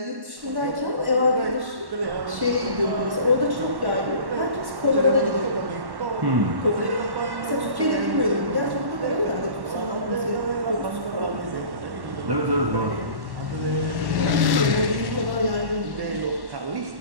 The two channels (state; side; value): late; left; 1.1 ms